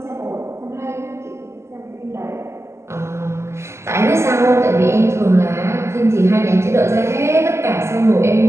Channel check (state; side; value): late; left; 0.13 ms